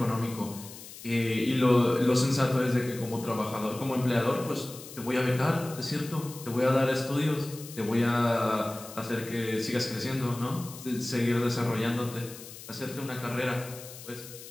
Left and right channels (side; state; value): left; noise; hiss, 15 dB below the sound